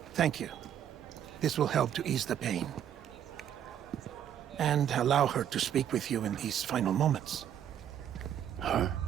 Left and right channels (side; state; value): left; quieter; 9.8 dB